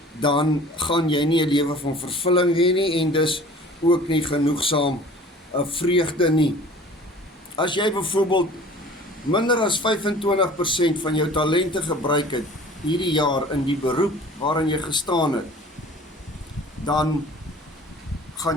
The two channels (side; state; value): both; normal; correlation 0.46